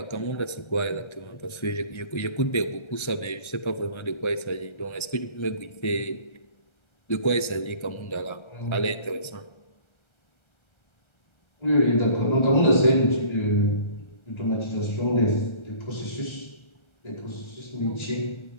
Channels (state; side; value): late; right; 1.3 ms